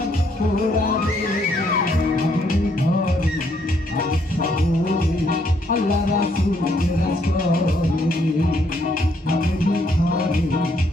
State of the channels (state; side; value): normal; both; correlation 0.70